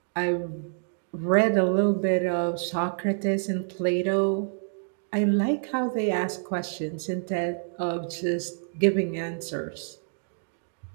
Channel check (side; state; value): left; silent; digital silence